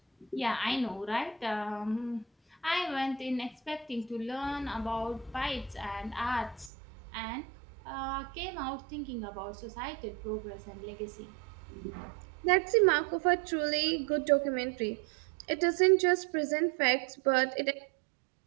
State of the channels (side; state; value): left; drops out; at 6.7 s